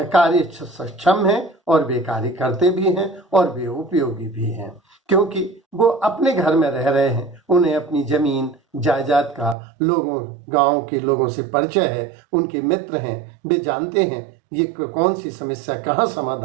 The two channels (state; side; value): drops out; left; at 9.6 s